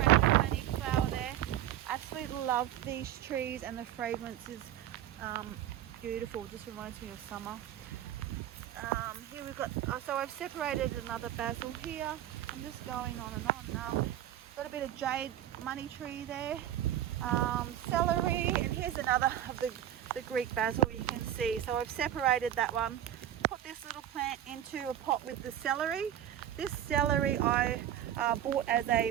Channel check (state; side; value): quieter; left; 11.6 dB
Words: flower there. Absolutely love these trees, and the fragrance is beautiful. Just reminds me of summer. Here we've got, so I've separated another basil here. I'm just going on and on now. Got a bit of jade money tree there, celery, and here's another of the Greek basil you can see. So I've separated that one, put this little plant into a pot with the celery. This celery I bought as a